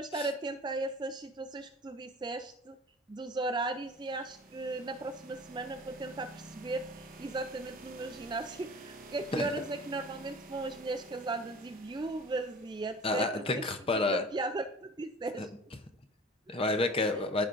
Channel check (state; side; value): normal; both; correlation 0.41